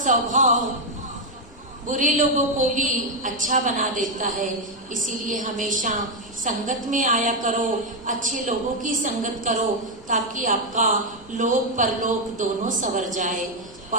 बुरे लोगों को भी अच्छा बना देता है। इसीलिए हमेशा संगत में आया करो, अच्छे लोगों की संगत करो, ताकि आपका लोक परलोक दोनों संवर जाए।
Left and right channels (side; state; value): left; noise; rumble, 23 dB below the sound